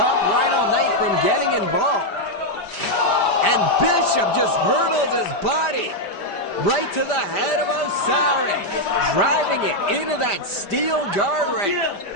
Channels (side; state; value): right; late; 5.0 ms